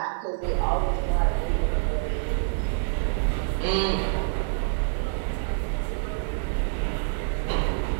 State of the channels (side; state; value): left; silent; 59 dB below the other